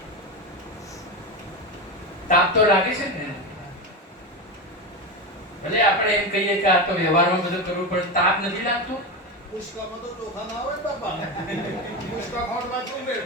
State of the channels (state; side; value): normal; both; correlation 0.18